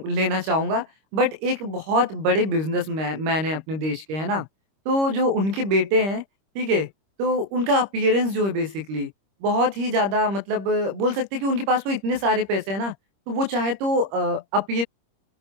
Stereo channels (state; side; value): late; left; 26 ms